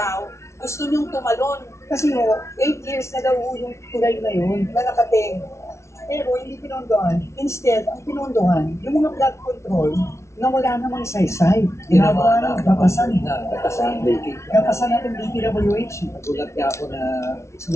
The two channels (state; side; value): late; right; 0.13 ms